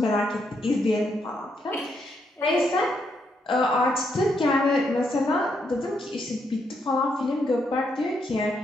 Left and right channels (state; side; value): normal; both; correlation 0.77